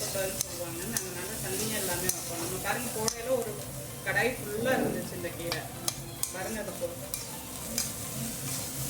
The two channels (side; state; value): both; identical; correlation 1.00